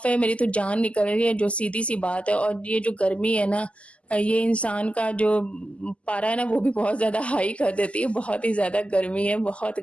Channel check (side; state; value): right; late; 0.060 ms